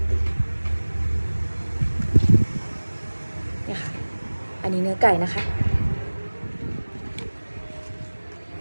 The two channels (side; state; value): both; inverted; correlation -1.00